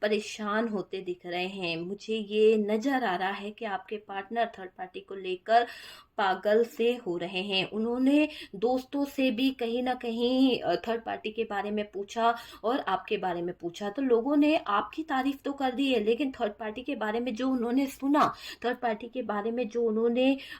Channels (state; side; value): identical; both; correlation 1.00